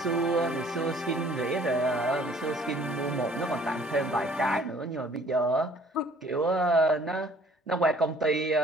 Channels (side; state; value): both; normal; correlation 0.56